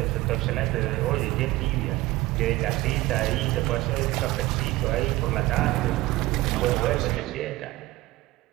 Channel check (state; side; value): quieter; left; 18.8 dB